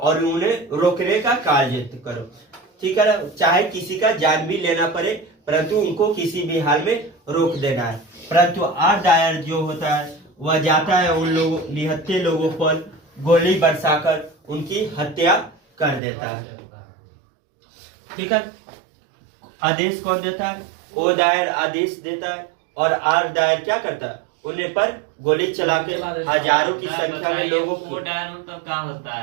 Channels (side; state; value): left; drops out; at 16.0 s